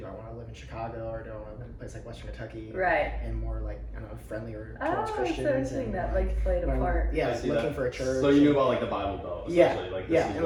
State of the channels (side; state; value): both; identical; correlation 1.00